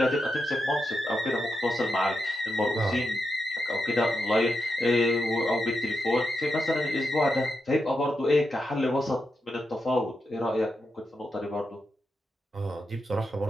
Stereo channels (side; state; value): both; normal; correlation 0.86